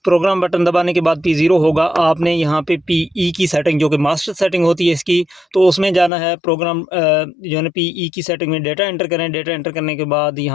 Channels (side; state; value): right; drops out; at 6.1 s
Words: प्रोग्राम बटन दबाने के बाद P0 होगा। आपने यहाँ पे PE की सेटिंग, जो कि मास्टर सेटिंग होती है इसकी, तो उसमें जाना है। प्रोग्राम जो है ना PE की सेटिंग में डेटा एंटर करें। डेटा एंटर करने के बाद